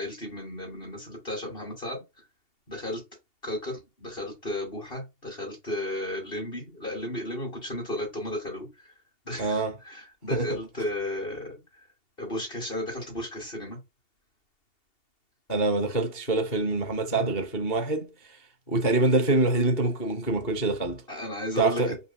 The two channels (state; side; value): late; right; 2.7 ms